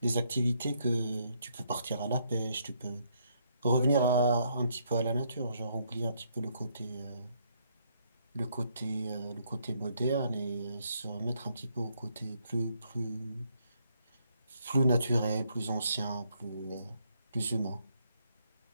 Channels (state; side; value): inverted; both; correlation -0.72